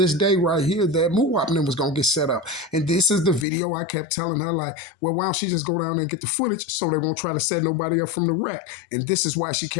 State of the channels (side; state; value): right; drops out; at 3.5 s